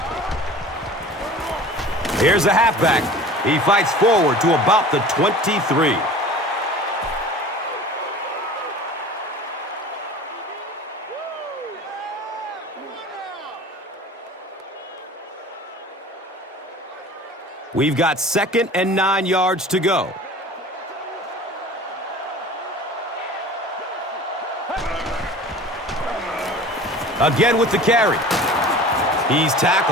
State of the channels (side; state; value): both; normal; correlation 0.41